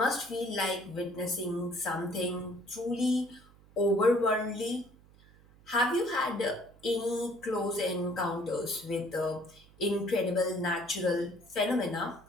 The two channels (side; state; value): right; noise; hum, 26 dB below the sound